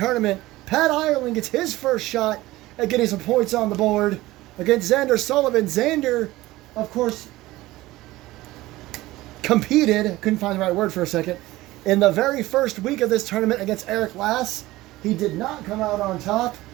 Pat Ireland gets his first shot at getting some points on the board against Xander Sullivan. Xander, of course, competed, couldn't find the right word for a second, in the very first week of this tournament against Eric Lass. He did not come out on top.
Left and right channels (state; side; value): quieter; left; 18.0 dB